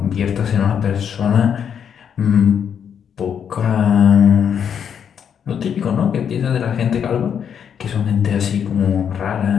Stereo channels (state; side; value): quieter; right; 8.0 dB